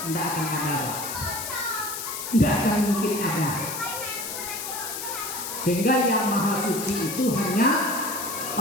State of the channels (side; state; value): left; noise; hiss, 6 dB below the sound